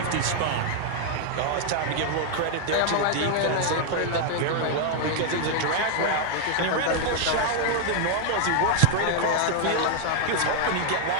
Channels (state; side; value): different; both; correlation 0.00